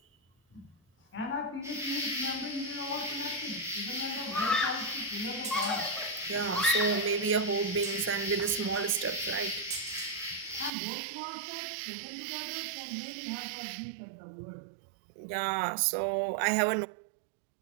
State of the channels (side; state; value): left; drops out; at 10.7 s